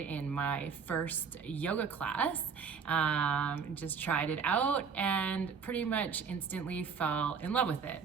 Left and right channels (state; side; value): quieter; left; 6.0 dB